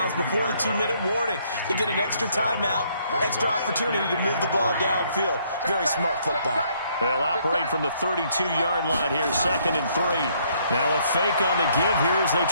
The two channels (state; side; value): inverted; both; correlation -0.67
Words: before the 2-minute warning. You get an extra timeout, extra opportunity to move the ball downfield. Very smart football. They'll operate from the 32-yard line here, 2nd and 3. Now a fake on the give here as they